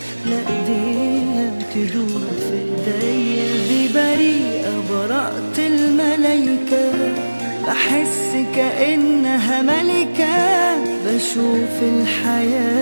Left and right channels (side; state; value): both; inverted; correlation -1.00